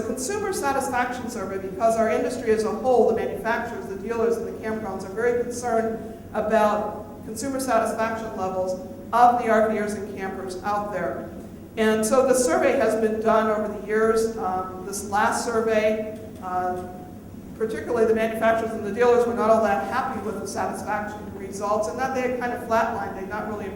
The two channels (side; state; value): both; identical; correlation 1.00